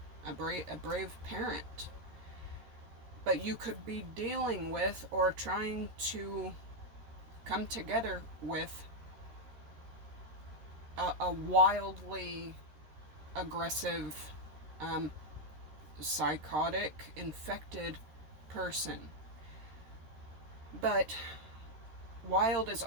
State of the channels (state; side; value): late; left; 13 ms